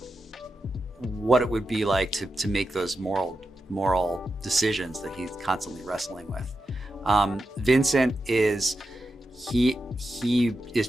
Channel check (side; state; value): both; normal; correlation 0.89